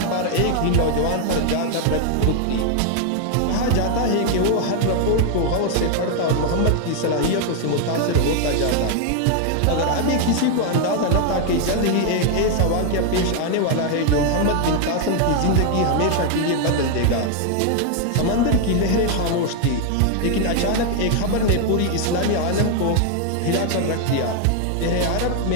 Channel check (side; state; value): both; different; correlation 0.00